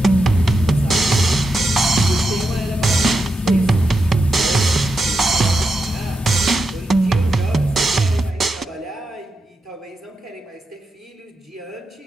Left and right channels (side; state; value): both; normal; correlation 0.87